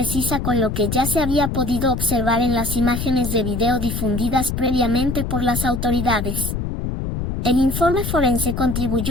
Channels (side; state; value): left; noise; rumble, 3 dB below the sound